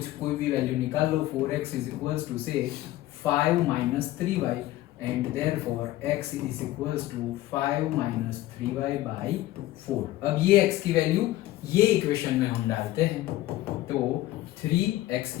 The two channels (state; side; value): quieter; right; 15.8 dB